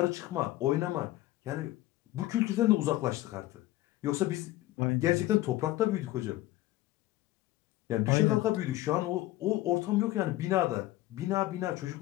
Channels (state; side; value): quieter; right; 16.5 dB